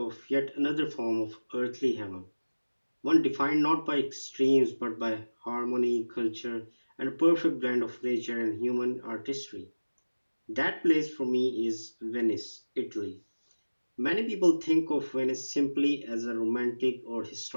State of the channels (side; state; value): both; inverted; correlation -1.00